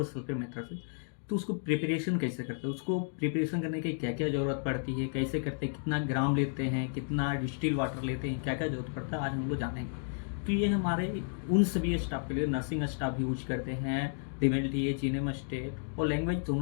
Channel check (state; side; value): silent; right; digital silence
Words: सल्फेट मेथड से, तो उसको प्रिपरेशन कैसे करते हैं, उसको प्रिपरेशन करने की क्या क्या जरूरत पड़ती है, कैसे करते हैं, कितना ग्राम लेते हैं, कितना डिस्टिल वाटर लेते हैं, क्या क्या जरूरत पड़ता है, आज हम लोग जानेंगे। तो ये हमारे उन सभी स्टाफ के लिए, नर्सिंग स्टाफ भी यूज करते हैं, DeMille T H enum state, और लैंग्वेज